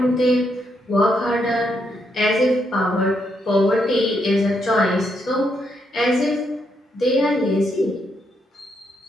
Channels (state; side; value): normal; both; correlation 0.78